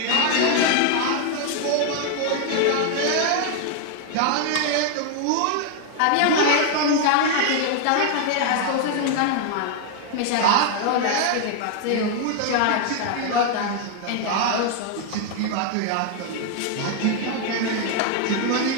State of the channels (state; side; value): different; both; correlation 0.00